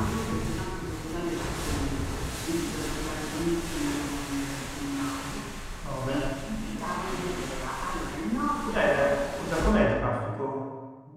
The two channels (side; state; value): both; identical; correlation 1.00